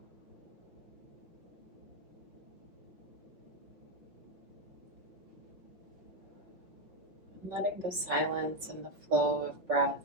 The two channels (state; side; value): late; left; 5.4 ms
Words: Letting the silence and the flow of breath